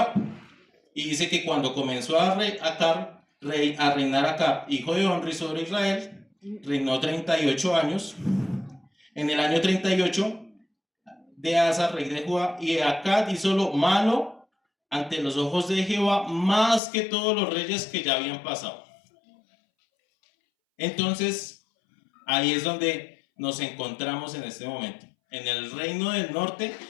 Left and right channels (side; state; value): right; drops out; at 16.8 s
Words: Y dice que cuando comenzó a reinar Acab, hijo de Omri, sobre Israel, reinó 38 años. En el año 38 de Asa, rey de Judá, y Acab hizo lo malo ante los ojos de Jehová, más que todos los reyes que ya habían pasado. Entonces, ahí es donde nos encontramos en este momento, en el reino del norte,